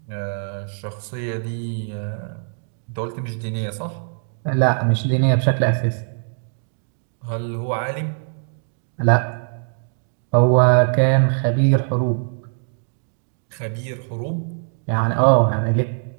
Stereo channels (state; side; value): silent; left; digital silence